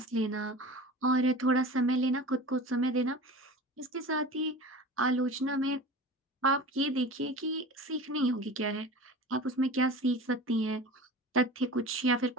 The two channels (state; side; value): normal; both; correlation 0.35